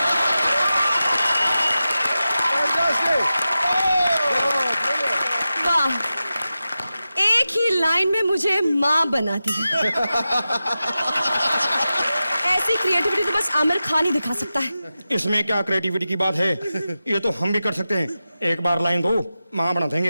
वाह, एक ही लाइन में मुझे माँ बना दी। ऐसी क्रिएटिविटी तो बस आमिर खान ही दिखा सकता है। इसमें क्या क्रिएटिविटी की बात है, ये तो हम भी कर सकते हैं। एक बार लाइन दो, माँ बना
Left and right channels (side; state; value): both; inverted; correlation -0.93